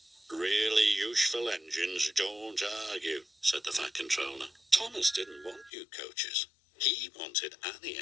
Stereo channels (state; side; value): drops out; right; at 5.7 s